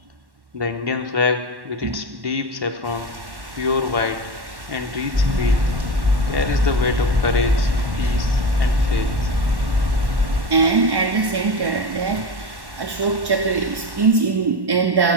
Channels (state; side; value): late; left; 1.1 ms